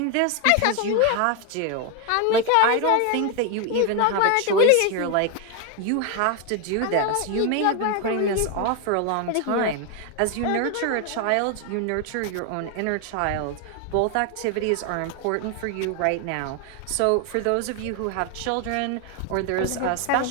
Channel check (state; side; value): different; both; correlation 0.01